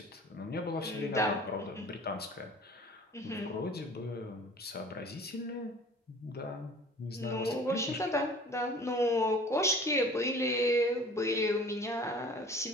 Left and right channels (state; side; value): normal; both; correlation 0.47